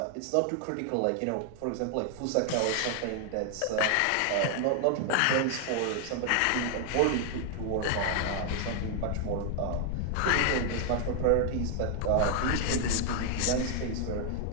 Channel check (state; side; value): different; both; correlation 0.00